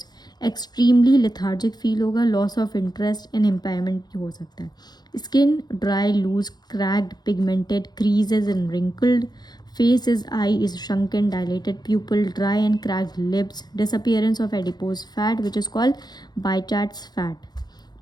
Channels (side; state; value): right; late; 0.20 ms